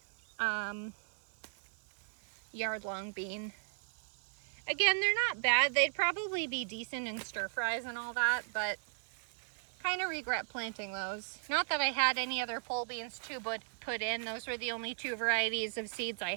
yard-long bean. Again, they're not bad. They'd probably be decent in stir fries and all that, but kind of regret planting those. Not that I had any other pole beans to put in. Those were the only two varieties of seeds I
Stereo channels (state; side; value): silent; left; digital silence